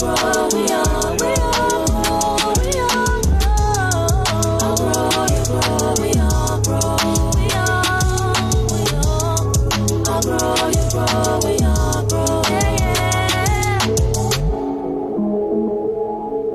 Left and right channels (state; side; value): identical; both; correlation 1.00